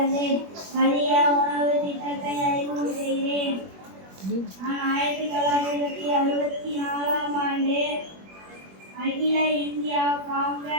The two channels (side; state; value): left; late; 21 ms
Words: மதிய உணவு திட்டத்தை அறிமுகம் செய்தேன். நான் 1964ஆம் ஆண்டு அகில இந்தியா